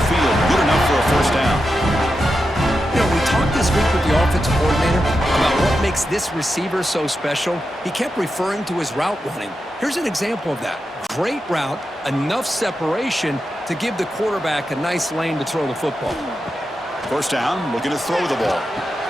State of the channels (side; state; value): both; normal; correlation 0.88